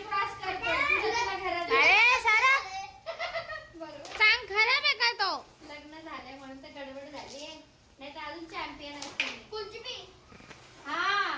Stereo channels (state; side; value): identical; both; correlation 1.00